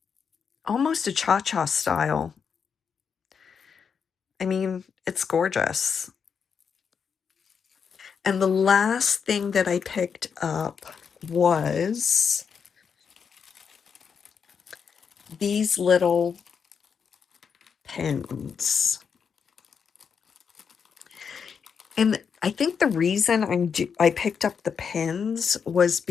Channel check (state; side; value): quieter; right; 6.5 dB